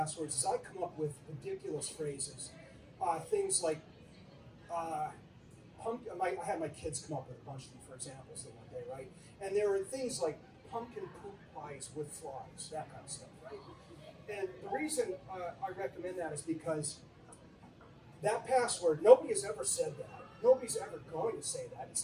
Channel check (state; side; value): identical; both; correlation 1.00